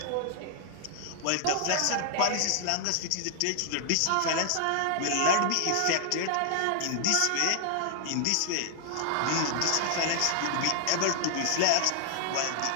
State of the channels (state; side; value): different; both; correlation 0.00